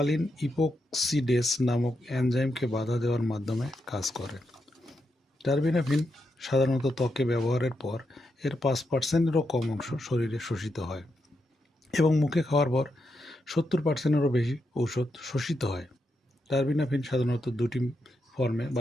ইপোক্সিডেস নামক এনজাইমকে বাধা দেওয়ার মাধ্যমে কাজ করে। টারবিনাফিন সাধারণত ত্বকে ব্যবহারের পর এর 5%-এরও কম অংশ শরীরে শোষিত হয় এবং মুখে খাওয়ার পর 70%-এরও বেশি ঔষধ শোষিত হয়। টারবিনাফিন সাধারণত দুটি ফর্মে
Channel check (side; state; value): both; normal; correlation 0.84